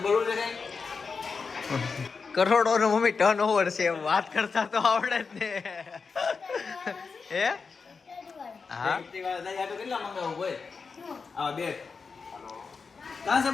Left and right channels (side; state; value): right; quieter; 5.0 dB